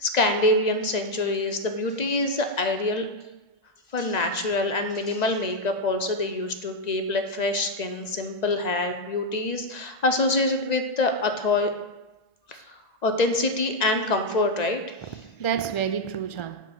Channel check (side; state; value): right; late; 1.9 ms